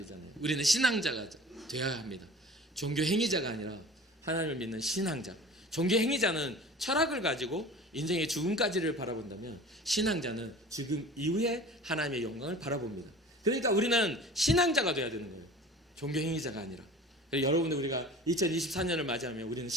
우리는 신앙자가 되어야 합니다. 종교 행위자가 아니라 하나님을 믿는 신앙자. 종교 행위자는 철학을 가지고 인생의 죽음까지를 바라본다면 신앙자는 지금 이후에 하나님의 영광을 바라봅니다. 그러니까 우리는 신앙자가 되어야 되는 거예요. 종교 행위자가 아니라. 여러분들 우리가 2024년을 맞이하면 우리는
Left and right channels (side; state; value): both; normal; correlation 0.42